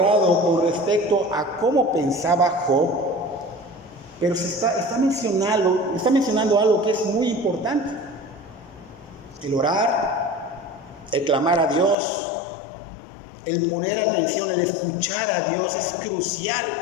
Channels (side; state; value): right; drops out; at 12.0 s